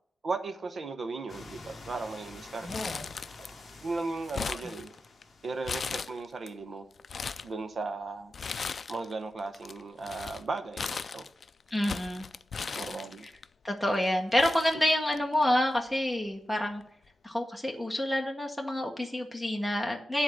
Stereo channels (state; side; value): normal; both; correlation 0.91